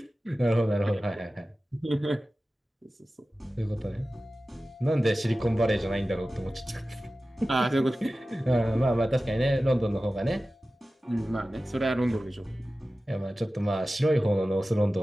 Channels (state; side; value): normal; both; correlation 0.95